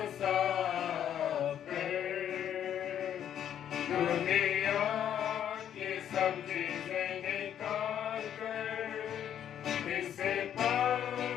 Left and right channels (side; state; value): right; quieter; 9.8 dB